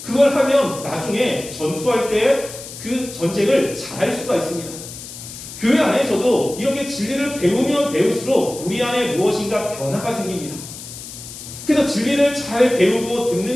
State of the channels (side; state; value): left; noise; hiss, 12 dB below the sound